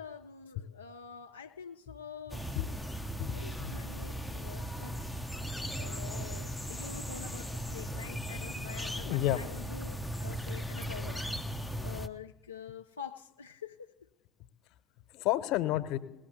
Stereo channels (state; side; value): quieter; right; 4.4 dB